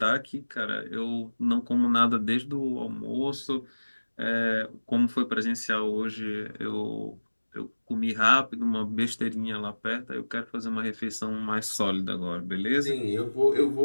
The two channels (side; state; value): both; inverted; correlation -1.00